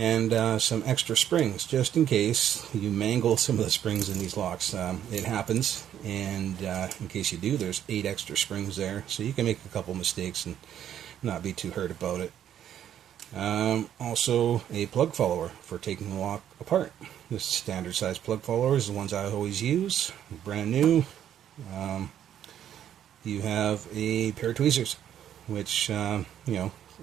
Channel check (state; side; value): quieter; left; 10.3 dB